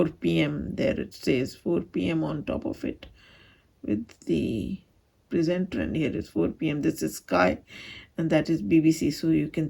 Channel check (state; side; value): identical; both; correlation 1.00